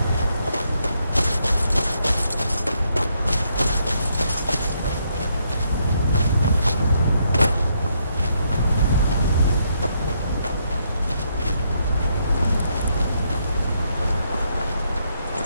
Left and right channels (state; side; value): inverted; both; correlation -0.76